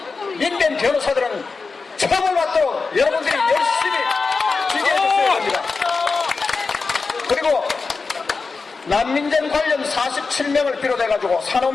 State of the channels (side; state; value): right; quieter; 4.4 dB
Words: 민변 변호사들은 처벌받도록 여러분들이 열심히 지지해주셔야 합니다. 그리고 난민전 관련 47명을 비롯해가지고